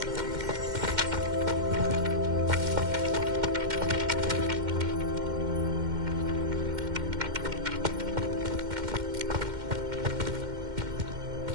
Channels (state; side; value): late; left; 2.1 ms